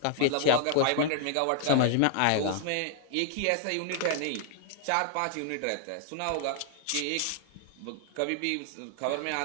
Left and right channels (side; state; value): both; different; correlation 0.00